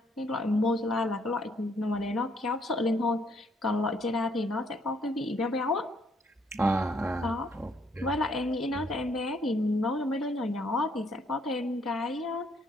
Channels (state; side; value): normal; both; correlation 0.68